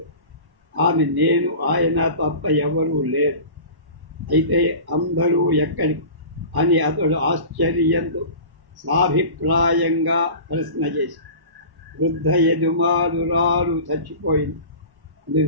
ఆమె నేను ఆయన తప్ప ఎవరూ లేరు, అయితే అందరూ ఎక్కడికి అని అతడు ఆశ్చర్యంతో సాభిప్రాయంగా ప్రశ్న చేసి, వృద్ధ యజమానురాలు చచ్చిపోయింది,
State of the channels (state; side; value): late; left; 1.1 ms